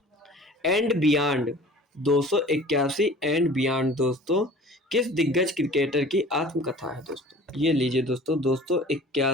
एंड बियॉन्ड 281 एंड बियॉन्ड दोस्तों किस दिग्गज क्रिकेटर की आत्मकथा है दोस्तों? ये लीजिए दोस्तों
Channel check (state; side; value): normal; both; correlation 0.45